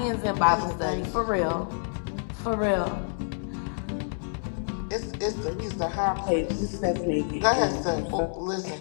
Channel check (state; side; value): silent; right; digital silence